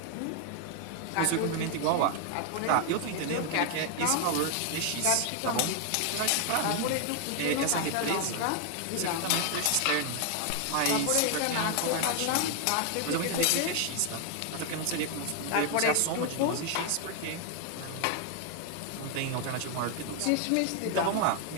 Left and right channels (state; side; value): different; both; correlation 0.01